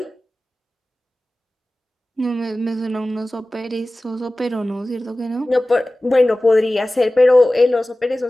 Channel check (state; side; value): normal; both; correlation 0.97